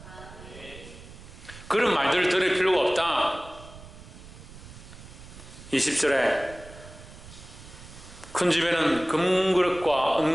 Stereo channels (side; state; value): right; noise; rumble, 17 dB below the sound